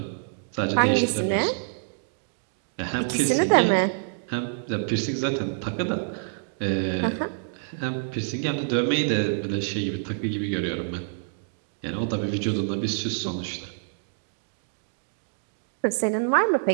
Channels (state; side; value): silent; left; digital silence